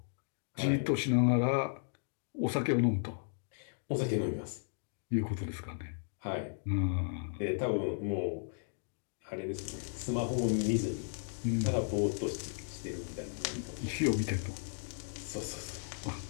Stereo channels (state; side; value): silent; right; digital silence